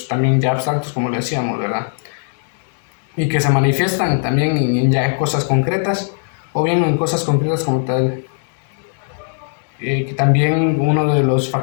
también ya abstractos, como lo decíamos, ¿verdad? Y que se manifiestan también en cosas concretas, o bien en cosas concretas como tal. Que también uno de los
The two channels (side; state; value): right; silent; digital silence